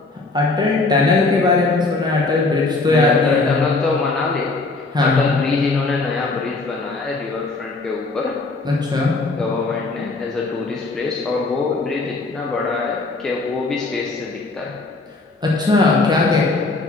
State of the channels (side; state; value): right; quieter; 3.5 dB